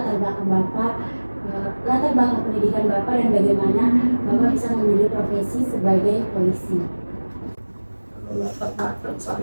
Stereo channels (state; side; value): inverted; both; correlation -1.00